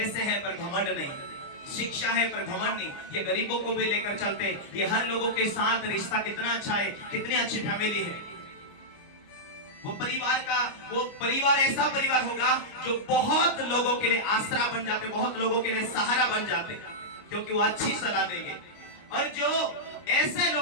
है पर घमंड नहीं, शिक्षा है पर घमंड नहीं, ये गरीबों को भी लेकर चलते, ये हर लोगों के साथ रिश्ता कितना अच्छा है, कितनी अच्छी फैमिली है। वो परिवार ऐसा परिवार होगा जो बहुत लोगों के लिए आसरा बन जाते, बहुत लोगों के लिए सहारा बन जाते, क्योंकि वो अच्छी सलाह देंगे। और जो ऐसे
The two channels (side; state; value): right; late; 29 ms